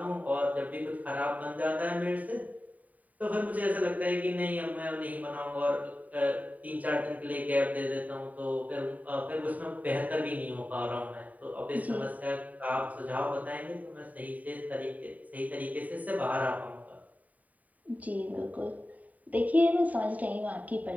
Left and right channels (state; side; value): late; left; 0.073 ms